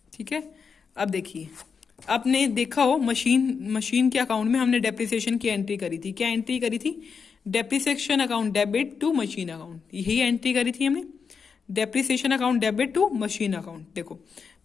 ठीक है, अब देखिए, आपने देखा हो मशीन के अकाउंट में हमने डेप्रिसिएशन की एंट्री करी थी। क्या एंट्री करी थी, depreciation account debit to machine account, यही एंट्री करी थी हमने, depreciation account debit to machine account. देखो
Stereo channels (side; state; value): right; quieter; 5.8 dB